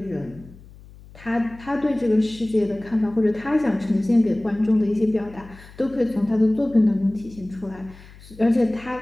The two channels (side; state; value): left; noise; hum, 21 dB below the sound